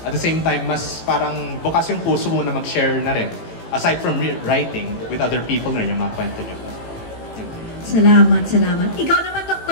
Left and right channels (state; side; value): late; right; 18 ms